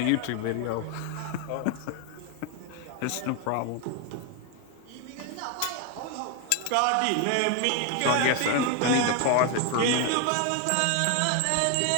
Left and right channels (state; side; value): different; both; correlation 0.01